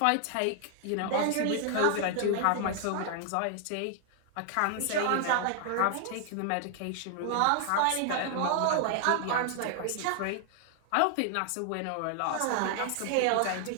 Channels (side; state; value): both; different; correlation 0.00